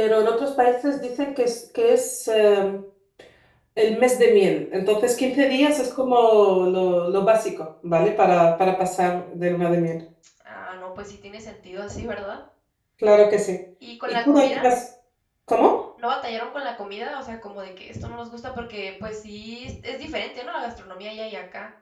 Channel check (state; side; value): identical; both; correlation 1.00